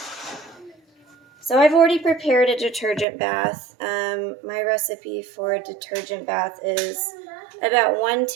So I've already prepared a detergent bath. My recipe for a detergent bath is about 1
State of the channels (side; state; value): left; drops out; at 3.1 s